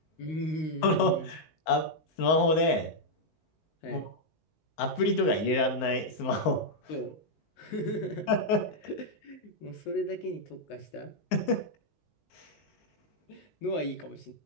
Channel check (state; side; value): late; right; 19 ms